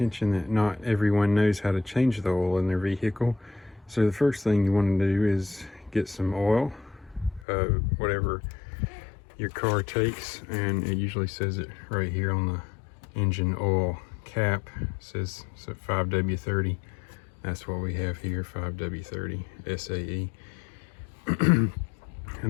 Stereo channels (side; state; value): right; drops out; at 7.5 s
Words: that not everyone knows how to change the oil in their vehicle. So the first thing you want to do is get some oil, whatever your car takes, and it usually says it right here on the engine oil cap. It says 5W30. That's what we have here, 5W30 SAE.